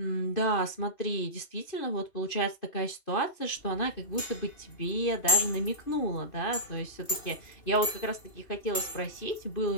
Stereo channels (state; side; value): late; right; 2.8 ms